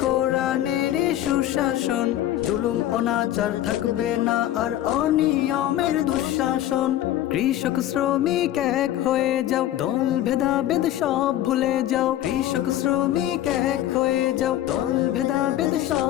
কোরআনের সুশাসন, জুলুম অনাচার থাকবে না আর অনিয়মের দুঃশাসন। কৃষক শ্রমিক এক হয়ে যাও, দল ভেদাভেদ সব ভুলে যাও। কৃষক শ্রমিক এক হয়ে যাও, দল ভেদাভেদ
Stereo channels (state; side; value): quieter; right; 13.0 dB